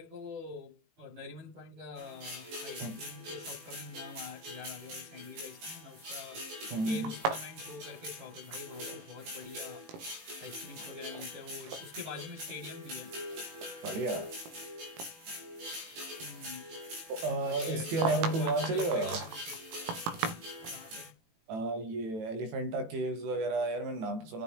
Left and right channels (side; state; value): left; late; 18 ms